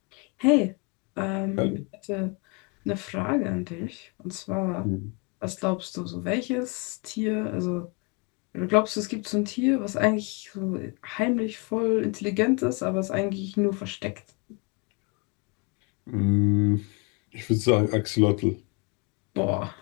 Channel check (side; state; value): right; quieter; 31.5 dB